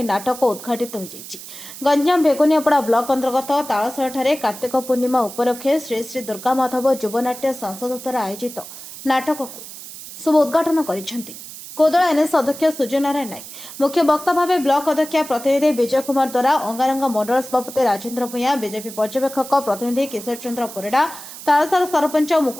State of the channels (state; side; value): noise; right; hiss, 13 dB below the sound